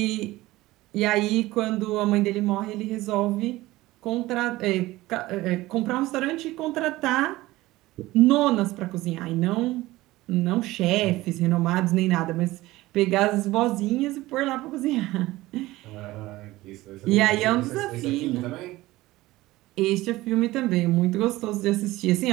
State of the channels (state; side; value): quieter; left; 18.1 dB